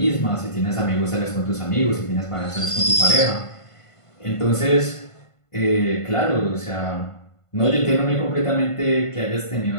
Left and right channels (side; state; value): right; late; 1.5 ms